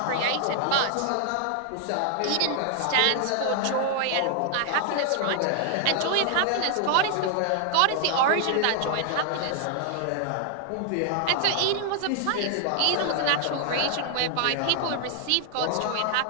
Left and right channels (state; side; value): different; both; correlation 0.00